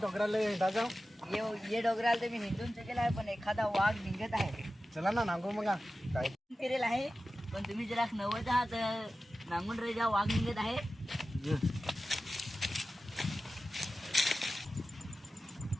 हिंडा जाऊ. ये डोंगराला तर मी हिंदून चुकेला आहे, पण एखादा वाघ निघत आहे. चला ना नांगू मग काय फिरेल आहे, पण तुम्ही जरा नवत आहात. नांगून रे जा, वाघ निघत आहे.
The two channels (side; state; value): both; normal; correlation 0.94